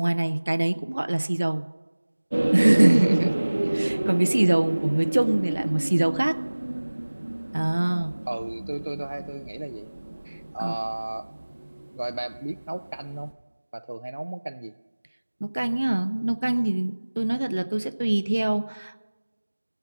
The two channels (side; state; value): both; inverted; correlation -1.00